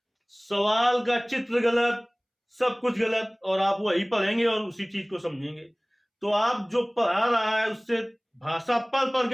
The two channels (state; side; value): identical; both; correlation 1.00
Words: सवाल का चित्र गलत, सब कुछ गलत, और आप वही पढ़ेंगे और उसी चीज को समझेंगे। तो आप जो पढ़ा रहा है उससे भाषा पढ़ पढ़